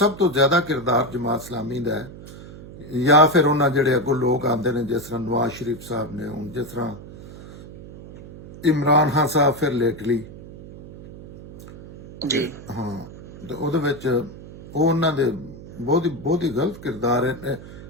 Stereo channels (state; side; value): noise; right; hum, 16 dB below the sound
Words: ਤੋਂ ਜ਼ਿਆਦਾ ਕਿਰਦਾਰ ਜਮਾਤ ਇਸਲਾਮੀ ਦਾ ਹੈ, ਜਾਂ ਫਿਰ ਉਹਨਾਂ ਜਿਹੜੇ ਅੱਗੋਂ ਲੋਕ ਆਉਂਦੇ ਨੇ ਜਿਸ ਤਰ੍ਹਾਂ ਨਵਾਜ਼ ਸ਼ਰੀਫ ਸਾਹਿਬ ਨੇ, ਹੁਣ ਜਿਸ ਤਰ੍ਹਾਂ ਇਮਰਾਨ ਖਾਨ ਸਾਹਿਬ ਫਿਰ ਲੇਟਲੀ ਜੀ ਹਾਂ, ਤੇ ਉਹਦੇ ਵਿੱਚ ਉਹ ਉਹਨਾਂ ਦੇ ਬਹੁਤ ਹੀ ਗਲਤ ਕਿਰਦਾਰ ਹੈ